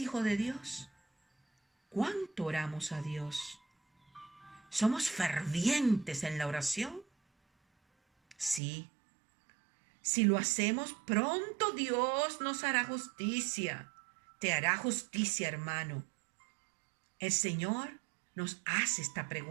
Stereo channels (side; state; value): left; drops out; at 8.6 s